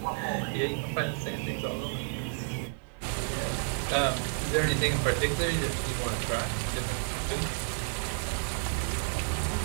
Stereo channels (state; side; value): silent; left; 57 dB below the other